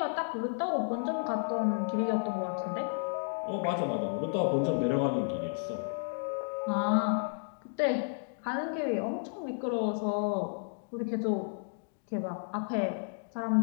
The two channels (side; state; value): right; silent; digital silence